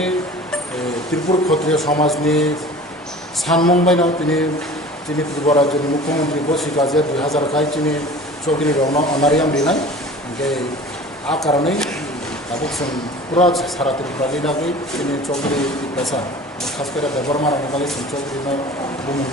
ত্রিপুর ক্ষত্রিয় সমাজনি সানমংবাই নাও তিনি তিনি ত্রিপুরা রাজ্যের মুখ্যমন্ত্রী বসিকাজে 2000 খাই চিনি চৌধুরী রং অনারিয়াম রিনাই যে আ কারণে তাবুক পুরা সারা ত্রিপুরা লিনাকে তিনি চৌধুরী পেশা খাস করে ব্যবহার মারানো বাকি চৌধুরী বুম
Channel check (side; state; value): both; normal; correlation 0.41